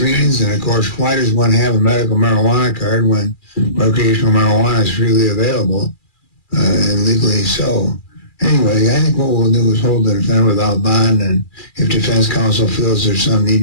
and of course, why does one have a medical marijuana card when recreational marijuana is freely available and legally so? Anyway, I think what we'll do is hold the defendant without bond, and if defense counsel feels there's some need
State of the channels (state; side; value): late; right; 2.4 ms